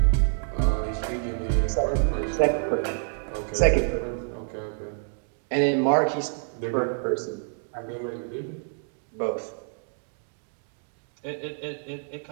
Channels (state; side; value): silent; left; 60 dB below the other